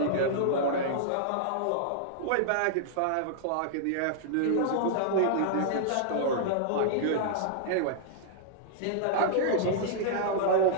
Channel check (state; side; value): different; both; correlation -0.01